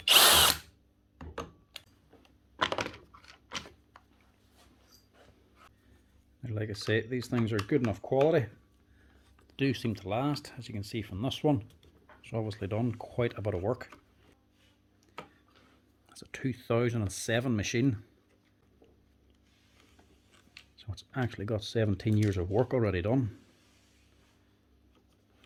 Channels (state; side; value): identical; both; correlation 1.00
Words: Like I say, these things are good enough quality. They do seem to last, as you can see from this one. It's obviously done quite a bit of work. It's a 2007 machine. So it's actually got 17 years of work already done.